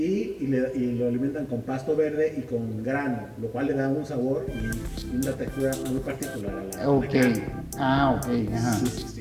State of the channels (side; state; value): both; identical; correlation 1.00